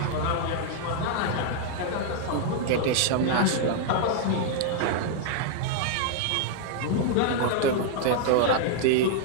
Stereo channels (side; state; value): both; different; correlation -0.01